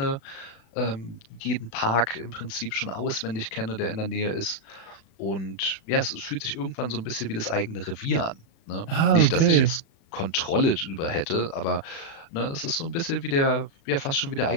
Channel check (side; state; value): right; late; 36 ms